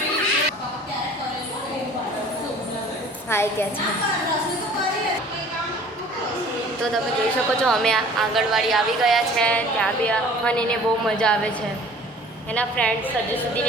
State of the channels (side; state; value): both; normal; correlation 0.49